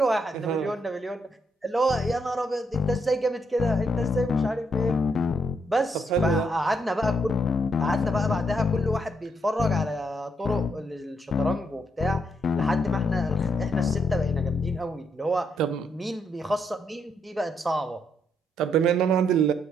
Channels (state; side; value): normal; both; correlation 0.75